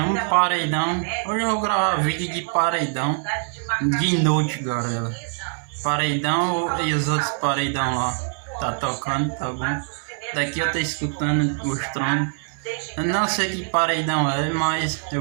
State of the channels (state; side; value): silent; left; 63 dB below the other